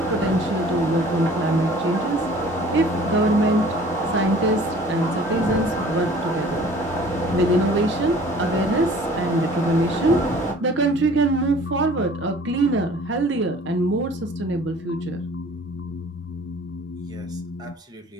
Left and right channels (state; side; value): normal; both; correlation 0.50